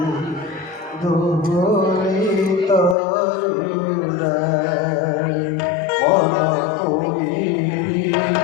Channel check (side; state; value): right; drops out; at 3.0 s